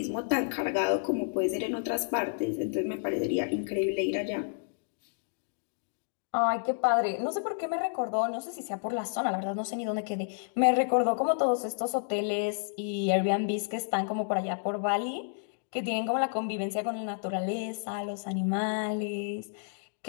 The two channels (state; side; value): silent; right; digital silence